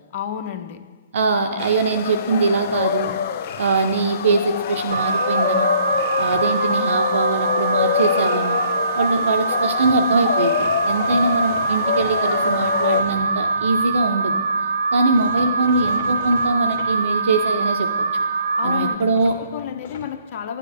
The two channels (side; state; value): both; inverted; correlation -0.64